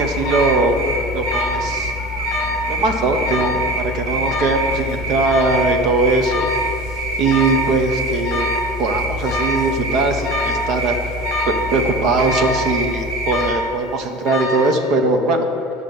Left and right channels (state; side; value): normal; both; correlation 0.34